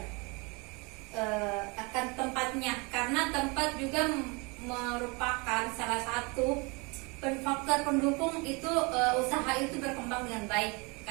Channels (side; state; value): left; quieter; 29.0 dB